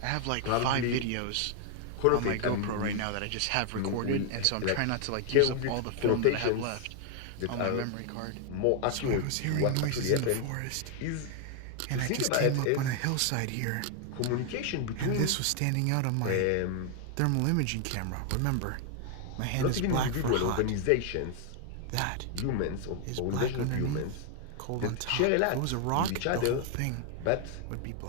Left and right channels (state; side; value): different; both; correlation 0.00